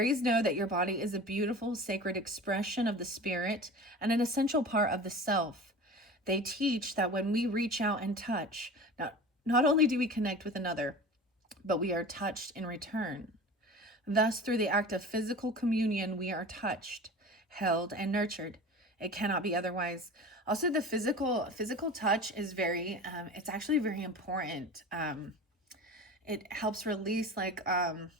know that your body is a beautiful, sacred expression of the spirit and an essential part of the self. They teach that when we reach out and touch, not only do we connect with another, but we are touched in return. Thus, through the act of physical communion, we are touched, held, and nurtured. It cannot be otherwise. Also, the physical touch is it's actually very important. It helps release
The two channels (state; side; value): normal; both; correlation 0.35